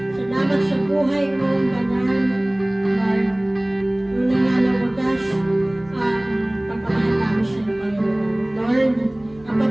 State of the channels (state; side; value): noise; right; hum, 26 dB below the sound